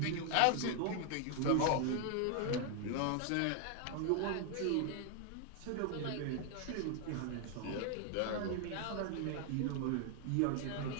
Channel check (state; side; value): different; both; correlation 0.00